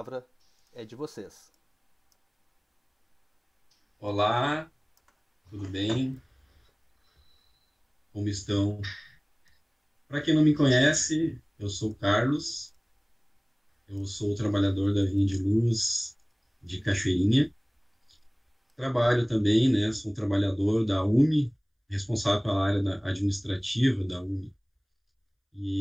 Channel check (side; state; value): both; identical; correlation 1.00